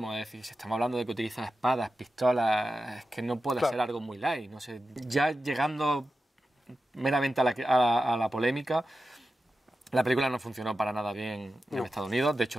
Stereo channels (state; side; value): normal; both; correlation 0.92